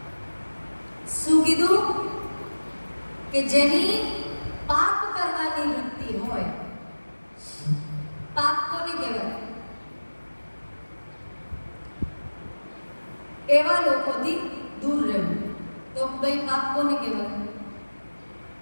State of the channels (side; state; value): both; inverted; correlation -1.00